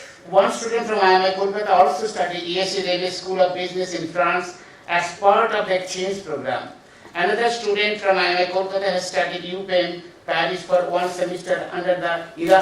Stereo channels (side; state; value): both; identical; correlation 1.00